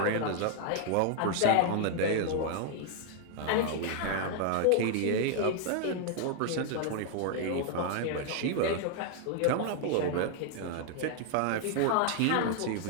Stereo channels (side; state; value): both; different; correlation 0.00